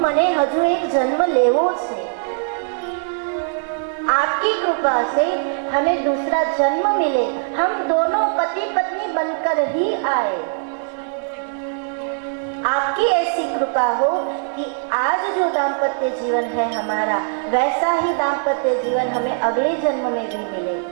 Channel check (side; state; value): left; silent; digital silence